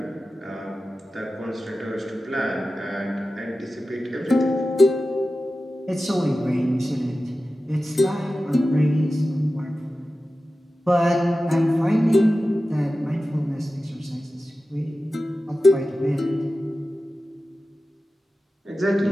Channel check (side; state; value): both; normal; correlation 0.94